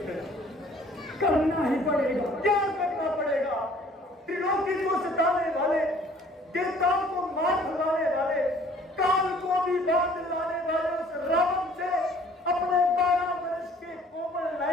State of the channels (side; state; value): both; normal; correlation 0.55